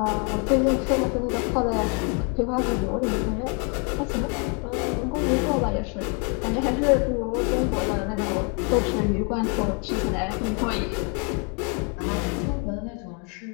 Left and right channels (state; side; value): quieter; right; 36.3 dB